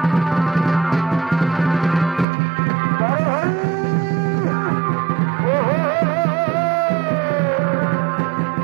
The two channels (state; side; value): drops out; left; at 2.2 s